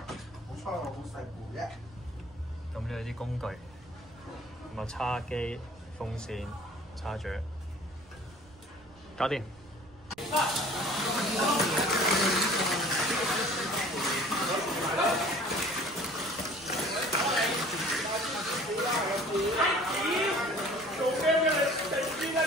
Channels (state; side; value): noise; right; rumble, 25 dB below the sound